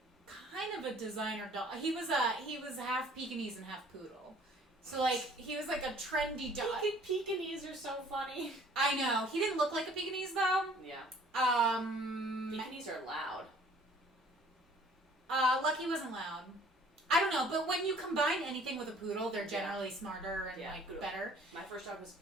kind of a designer dog. He was half Pekingese and half poodle. So like he was like a trendy dog. Pekingese are so funny. I know. He didn't look like a Pekingese though. Yeah. Um. Pekingese are loud. Lucky wasn't loud. I don't know, but when you combine anything with a poodle, they're generally smarter and poodle. better. My first dog was a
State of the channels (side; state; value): both; normal; correlation 0.55